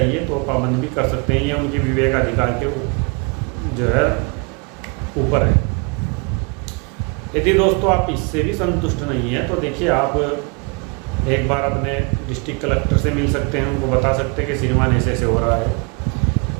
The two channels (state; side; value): quieter; left; 32.7 dB